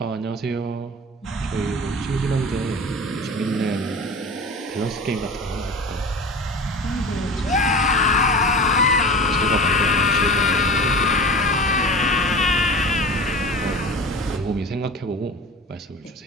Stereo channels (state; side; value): normal; both; correlation 0.35